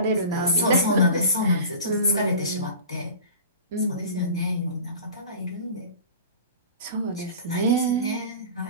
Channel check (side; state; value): both; inverted; correlation -0.38